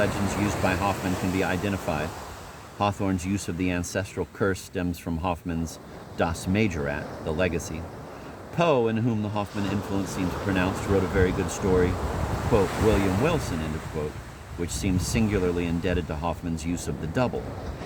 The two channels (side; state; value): both; identical; correlation 1.00